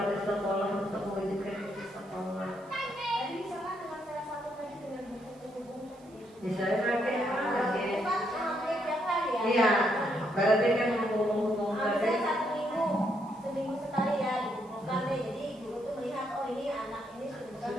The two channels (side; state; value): right; noise; hiss, 29 dB below the sound